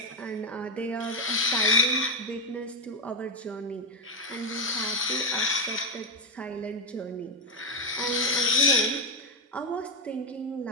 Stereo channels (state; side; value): normal; both; correlation 0.06